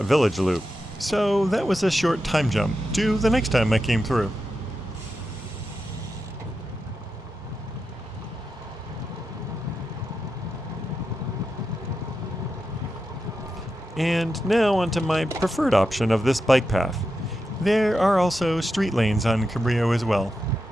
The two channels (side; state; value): both; normal; correlation 0.88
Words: village loop, so that was a short time jump to the next time I came through. And now onto my preferred option of this bike path. There are also street lanes on Cabrillo as well.